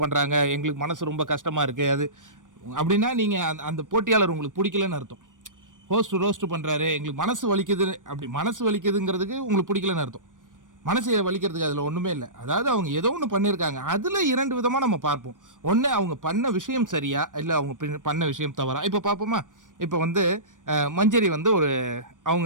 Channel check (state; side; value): late; left; 0.88 ms